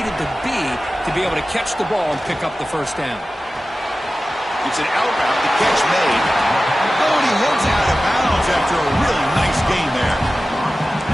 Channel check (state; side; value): normal; both; correlation 0.95